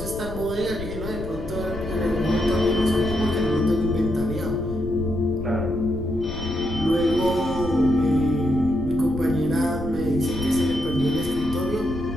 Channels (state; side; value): noise; left; rumble, 10 dB below the sound